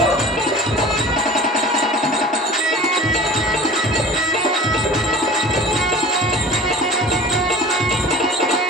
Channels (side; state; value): both; normal; correlation 0.41